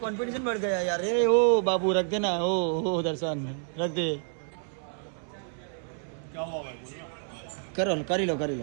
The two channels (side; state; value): left; silent; 59 dB below the other